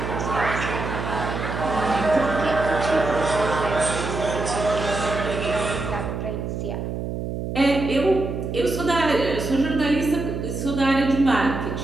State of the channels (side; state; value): right; noise; hum, 4 dB below the sound